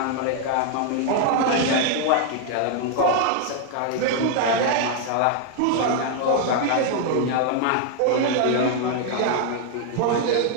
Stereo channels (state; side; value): different; both; correlation 0.00